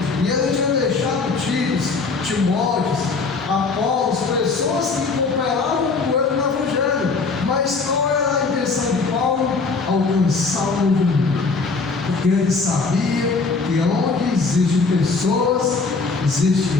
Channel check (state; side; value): quieter; right; 4.3 dB